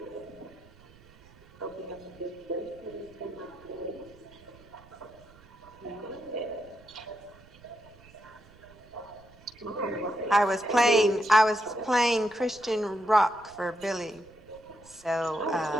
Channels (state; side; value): noise; right; rumble, 25 dB below the sound